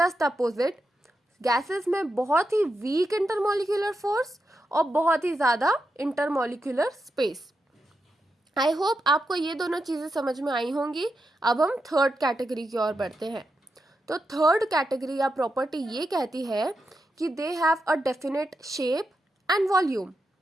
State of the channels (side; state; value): both; normal; correlation 0.86